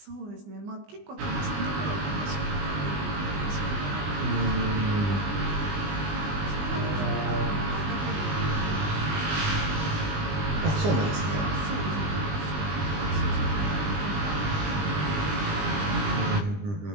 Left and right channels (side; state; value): left; late; 20 ms